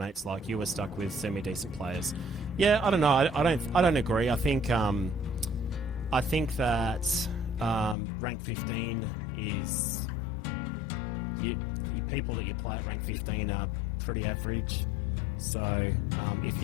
like you are stuck with semi-decent players. Yeah, I don't know. I don't agree. I think that rank 15 is you people that you play at rank 15 are pretty average. So if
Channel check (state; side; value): drops out; right; at 8.0 s